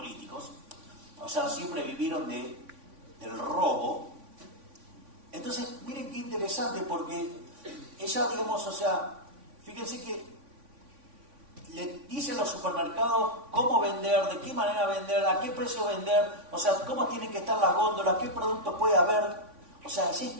o sea, siempre vivieron del robo. Entonces, miren qué interesante, porque ella, digamos, o sea, fíjense que le dice a los supermercados cómo vender, de qué manera vender, a qué precio vender, o sea, cómo tienen que estar las góndolas, qué productos puede haber, o sea, es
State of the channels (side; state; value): left; late; 3.5 ms